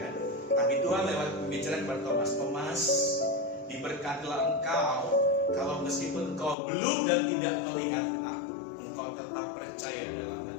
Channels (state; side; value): drops out; right; at 6.6 s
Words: Tapi Tuhan lewat pembicaraan kepada Thomas, diberkatilah engkau kalau meskipun engkau belum dan tidak melihat aku, engkau tetap percaya dalam